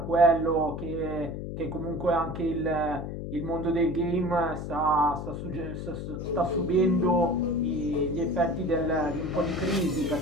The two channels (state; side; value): noise; left; hum, 6 dB below the sound